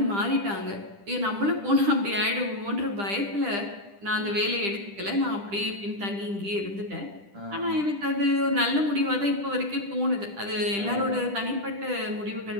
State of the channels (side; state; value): left; late; 10 ms